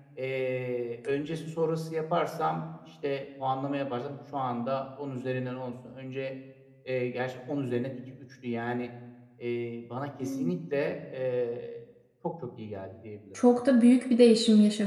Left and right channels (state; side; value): identical; both; correlation 1.00